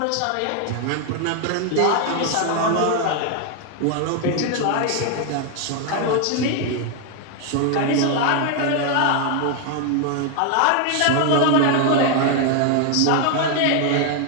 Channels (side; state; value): both; different; correlation 0.00